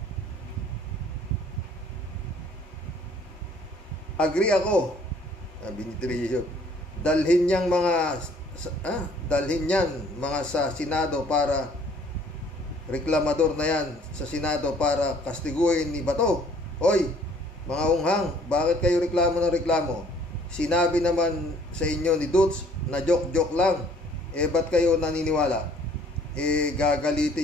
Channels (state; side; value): normal; both; correlation 0.58